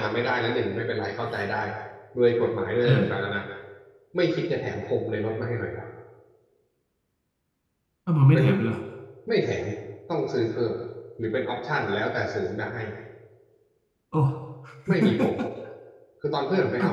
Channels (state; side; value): identical; both; correlation 1.00